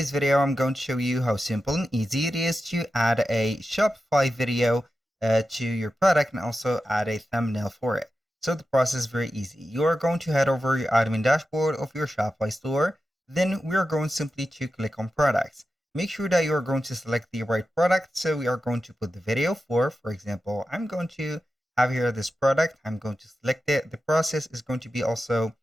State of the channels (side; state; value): both; normal; correlation 0.91